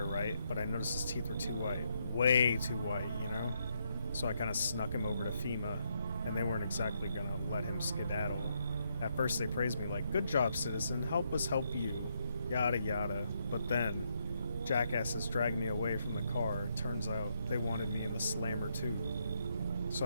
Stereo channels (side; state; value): both; inverted; correlation -0.78